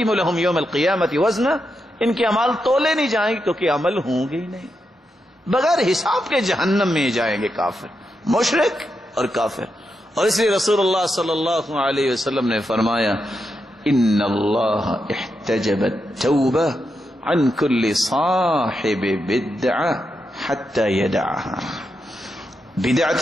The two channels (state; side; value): normal; both; correlation 0.85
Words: لهم یوم القیامت وزنا. ان کے اعمال تولے نہیں جائیں گے کیونکہ عمل ہوں گے ہی نہیں. بغیر حساب کے جہنم میں جائیں گے کافر، مشرک اور کافر. اور اس لیے رسول اللہ صلی اللہ علیہ وسلم نے فرمایا ان اللہ احتجب التوبہ عن كل صاحب بدعہ حتی یدعها.